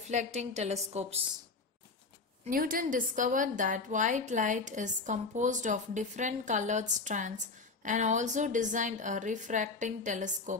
telescopes. Newton discovered that white light is composed of different colored strands and also designed a refracting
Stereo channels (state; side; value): quieter; right; 4.0 dB